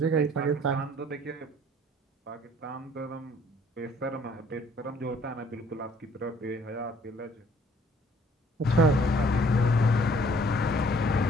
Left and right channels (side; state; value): both; normal; correlation 0.59